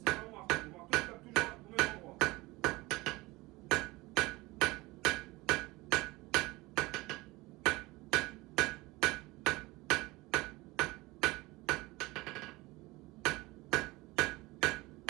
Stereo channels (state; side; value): quieter; left; 21.5 dB